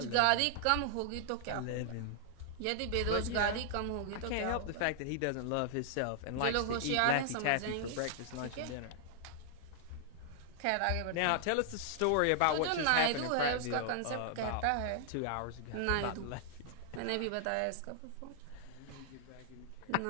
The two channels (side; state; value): both; different; correlation -0.01